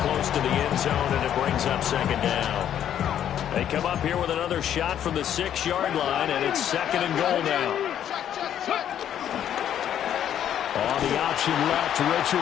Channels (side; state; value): right; quieter; 10.2 dB